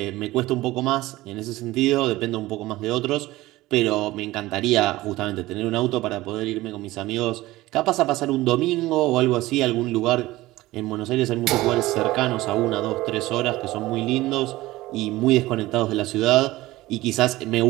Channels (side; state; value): left; quieter; 18.0 dB